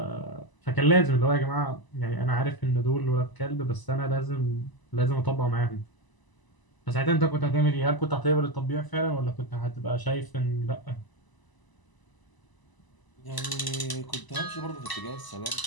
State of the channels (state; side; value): late; right; 1.0 ms